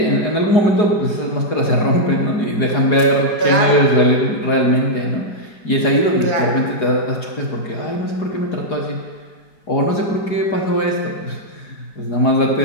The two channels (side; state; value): right; late; 4.8 ms